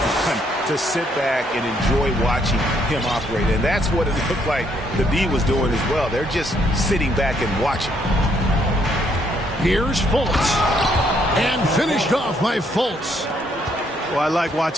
to sit back and enjoy watching him operate. And that's what it looked like the D was doing as well. They're just sitting back and watching. Here's Fultz. And finished off by Fultz. Well, I like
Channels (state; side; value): normal; both; correlation 0.71